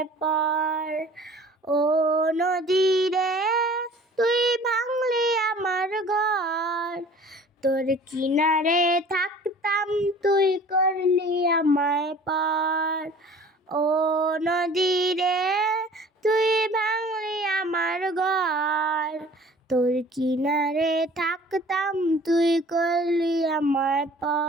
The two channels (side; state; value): both; normal; correlation 0.47